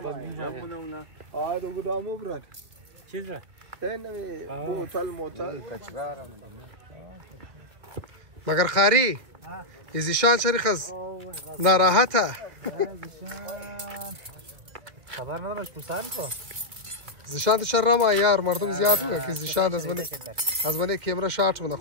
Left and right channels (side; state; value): left; late; 1.9 ms